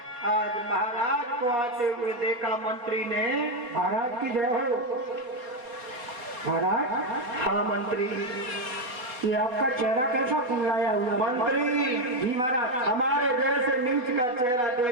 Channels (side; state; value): left; late; 4.1 ms